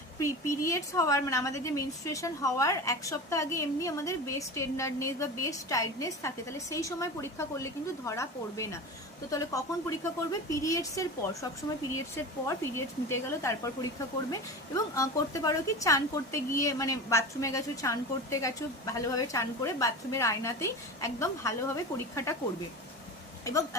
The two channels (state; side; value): normal; both; correlation 0.30